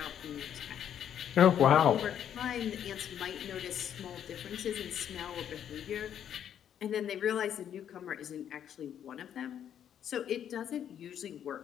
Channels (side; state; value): right; quieter; 9.5 dB